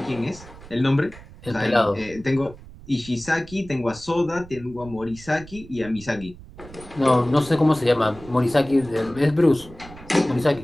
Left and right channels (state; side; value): noise; right; rumble, 18 dB below the sound